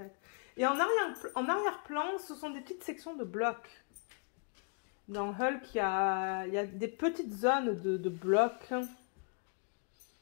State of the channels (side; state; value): right; quieter; 38.4 dB